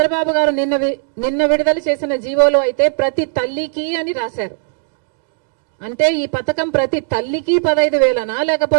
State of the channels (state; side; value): silent; left; digital silence